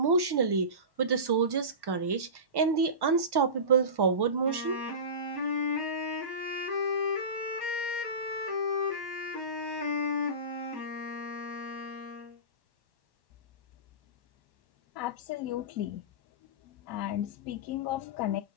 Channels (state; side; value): late; left; 1.1 ms